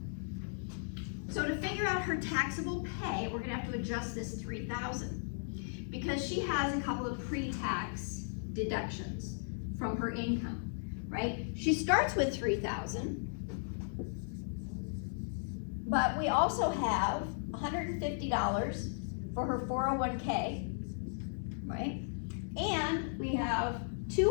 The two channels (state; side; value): silent; right; digital silence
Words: So to figure out her taxable pay, we're gonna have to adjust this 3,000 because she has a couple of pre-tax deductions from her income, right? She starts with 3,000, but we also have $150 for her 401k, right? And we have